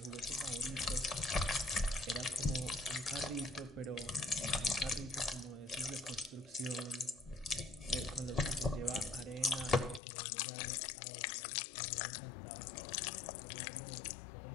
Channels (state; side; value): drops out; right; at 10.0 s